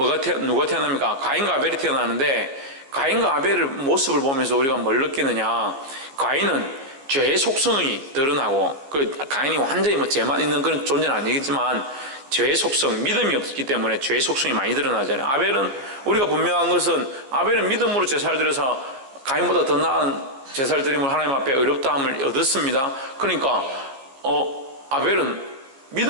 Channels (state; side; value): late; left; 15 ms